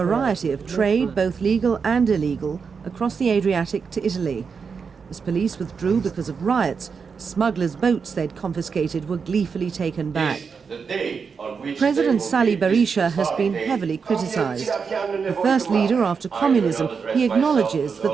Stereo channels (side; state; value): left; quieter; 5.7 dB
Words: of trade, both legal and illegal, across the Adriatic to Italy. As police withdrew because of riots, smugglers' boats they'd confiscated were gleefully taken back. President Sali Berisha has been heavily criticised. The first leader after communism, he acknowledges